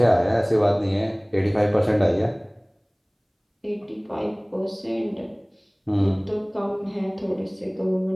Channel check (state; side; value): identical; both; correlation 1.00